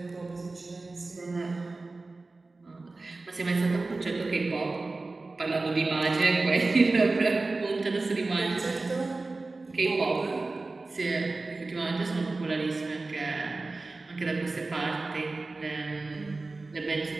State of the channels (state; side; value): quieter; left; 3.4 dB